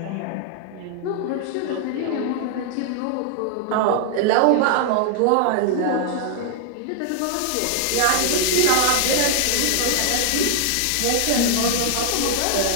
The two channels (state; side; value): different; both; correlation 0.00